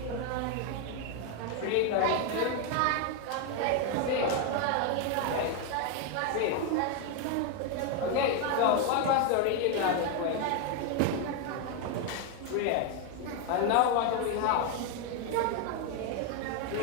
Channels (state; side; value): different; both; correlation 0.01